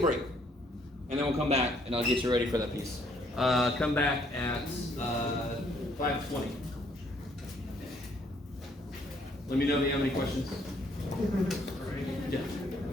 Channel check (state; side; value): normal; both; correlation 0.66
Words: and then we'll come back, and I'll get you ready for that piece. Come back at 5:20. Let me know if you have any questions. Yeah.